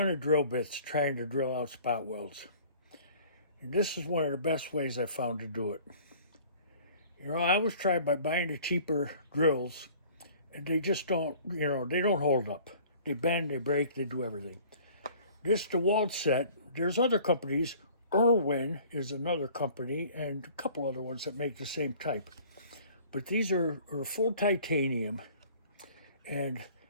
of drill bits trying to drill out spot welds. And this is one of the best ways I found to do it. You know, I always try by buying the cheaper drills, and they just don't, they don't hold up. They bend, they break, they do everything. This DeWalt set, there's other companies. Irwin is another company, and a couple other ones that make the same type. But these are full titanium, and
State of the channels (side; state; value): both; inverted; correlation -0.50